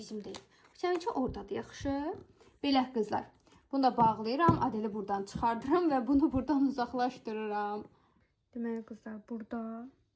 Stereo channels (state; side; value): identical; both; correlation 1.00